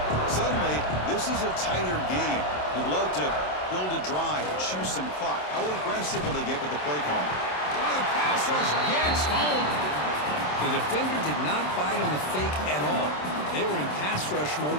Suddenly, this is a tighter game. You'd love to build a drive, choose some clock. How aggressive will they get with the play call? Oh, the pass rush gets home. The defender did not bite on the fake at all. They were in pass rush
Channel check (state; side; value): late; right; 27 ms